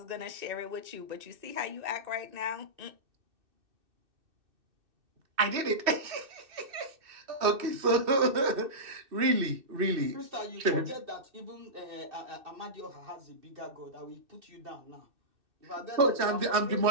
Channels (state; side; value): late; left; 2.6 ms